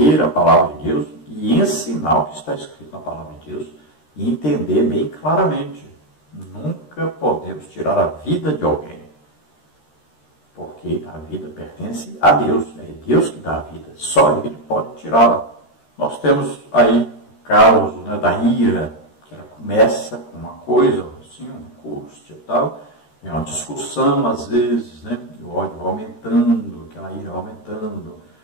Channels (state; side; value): late; right; 13 ms